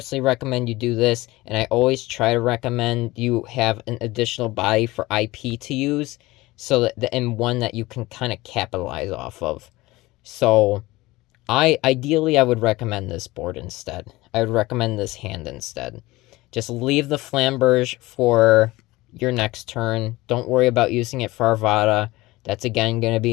recommend you do this, and I always try to recommend you have an additional body for IP to use, so that and one that you can kind of capitalize off of. So, ideally I would recommend this board instead. I would recommend this hand instead. Just leave the Flamberge for your next turn. Don't worry about using it for Arvada. That's again going to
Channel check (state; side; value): quieter; right; 19.9 dB